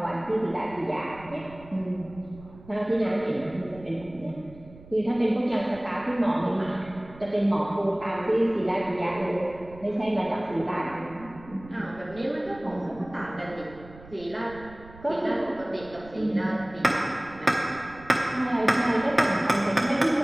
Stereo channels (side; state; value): right; noise; rumble, 20 dB below the sound